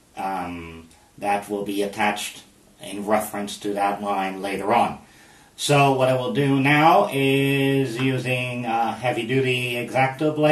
that will be attached in reference to that line later on. So what I will do now is, using a heavy-duty X-Acto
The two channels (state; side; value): identical; both; correlation 1.00